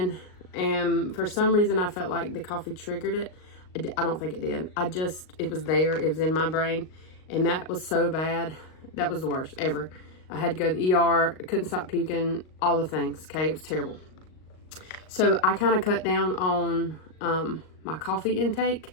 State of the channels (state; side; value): late; right; 38 ms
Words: and for some reason I felt like the coffee triggered it. I don't think it did. It was there. It was in my brain, and that was so bad. That was the worst ever. I had to go to the ER. I couldn't stop puking, all the things, okay? It was terrible. So I kind of cut down on my coffee intake.